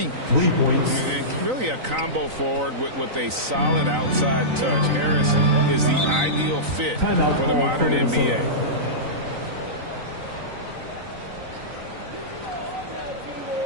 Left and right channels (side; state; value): left; late; 3.9 ms